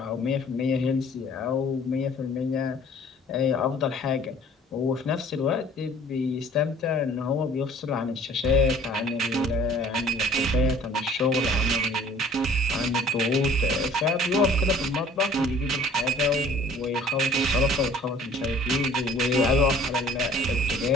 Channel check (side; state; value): both; normal; correlation 0.52